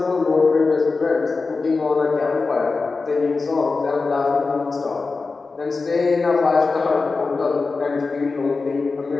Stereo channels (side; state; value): right; quieter; 4.1 dB